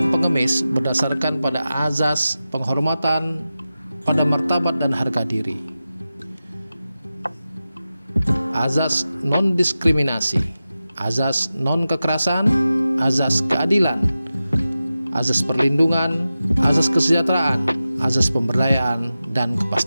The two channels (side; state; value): both; inverted; correlation -0.94